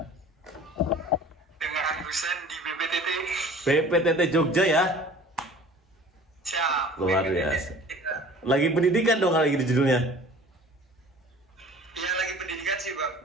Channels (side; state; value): both; normal; correlation 0.46